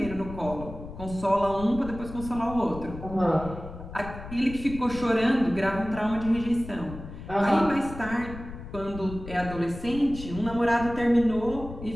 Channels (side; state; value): left; noise; rumble, 12 dB below the sound